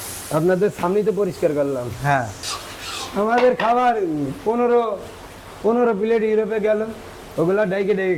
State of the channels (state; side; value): identical; both; correlation 1.00